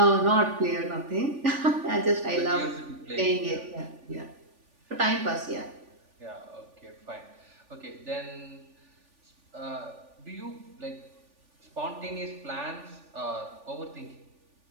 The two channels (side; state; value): left; late; 3.4 ms